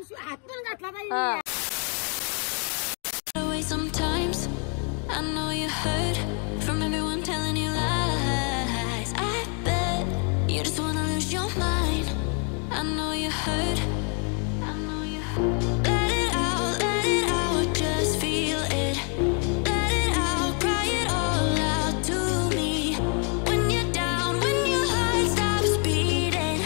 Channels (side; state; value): right; quieter; 39.1 dB